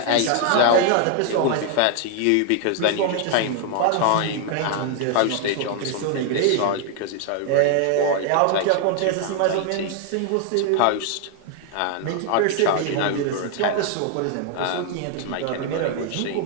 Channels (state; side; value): different; both; correlation 0.00